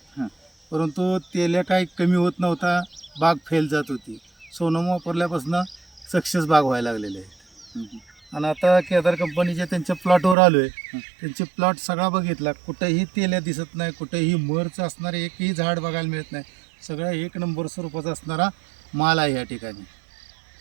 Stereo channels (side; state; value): left; drops out; at 10.4 s